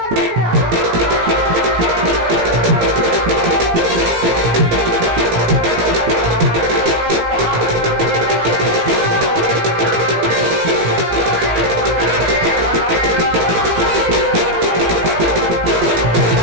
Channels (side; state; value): left; late; 17 ms